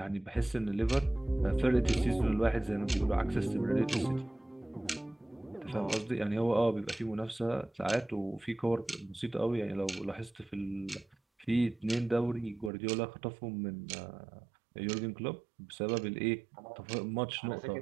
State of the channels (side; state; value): left; drops out; at 12.7 s